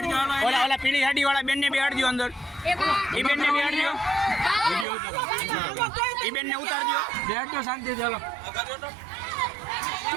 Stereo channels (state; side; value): drops out; left; at 4.9 s